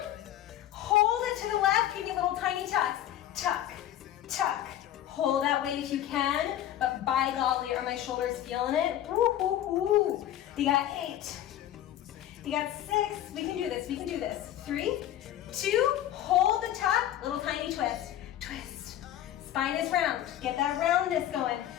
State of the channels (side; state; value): right; quieter; 12.1 dB